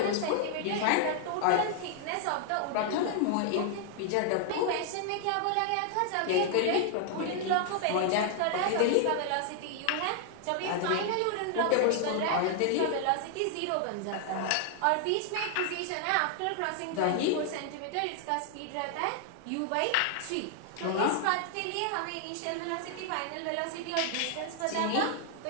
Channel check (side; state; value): both; different; correlation 0.00